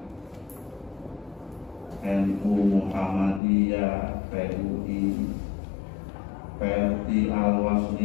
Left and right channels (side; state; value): right; drops out; at 3.4 s